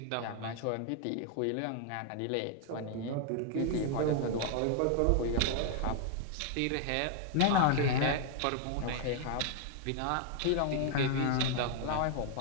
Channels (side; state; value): both; different; correlation 0.00